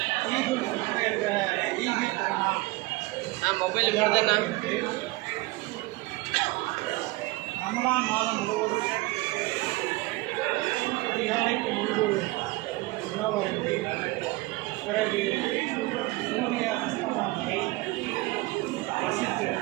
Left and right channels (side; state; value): left; quieter; 21.3 dB